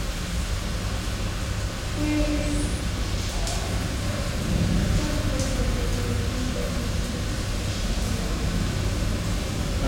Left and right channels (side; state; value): both; identical; correlation 1.00